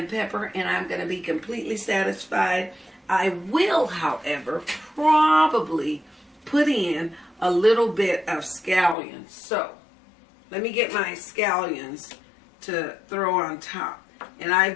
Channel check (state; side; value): drops out; right; at 9.0 s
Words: pepper, and I'm going to be completely satisfied. I will, however, probably put in a little bit of scallions. So let me get my scallions to throw on top. And